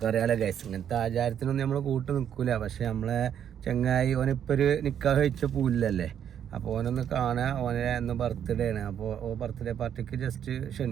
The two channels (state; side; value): quieter; left; 9.2 dB